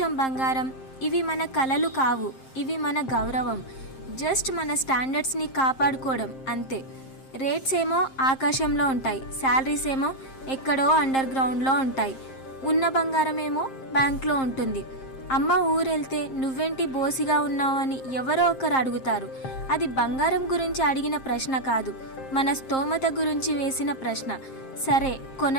బంగారం, ఇవి మన కలలు కావు, ఇవి మన గౌరవం. జస్ట్ మన స్టాండర్డ్స్ని కాపాడుకోవడం అంతే. రేట్స్ ఏమో ఆకాశంలో ఉంటాయి, శాలరీస్ ఏమో ఎక్కడో అండర్ గ్రౌండ్లో ఉంటాయి. ఉన్న బంగారం ఏమో బ్యాంక్లో ఉంటుంది. అమ్మ ఊరెళ్తే నువ్వేంటి బోసిగా ఉన్నావు అని ఎవరో ఒకరు అడుగుతారు. అది బంగారం గురించి అడిగిన ప్రశ్న కాదు, మన స్తోమత గురించి వేసిన ప్రశ్న. సరే,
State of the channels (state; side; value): late; right; 7.5 ms